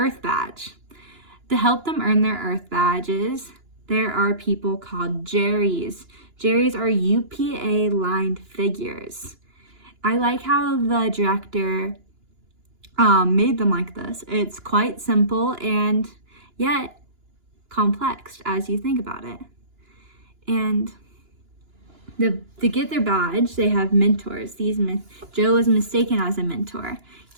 badge. To help them earn their Earth badges, there are people called Jerrys. Jerrys are UPA-lined figures. I like how the director made them like this. It's quite simple and yet complex as you think about it. And to get their badge, they have mentors. Joe was mistaken as a mentor.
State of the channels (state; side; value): late; left; 2.9 ms